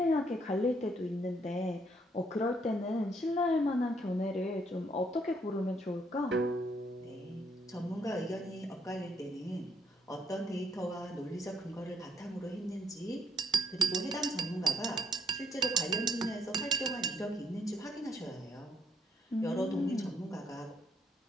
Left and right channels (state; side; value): normal; both; correlation 0.70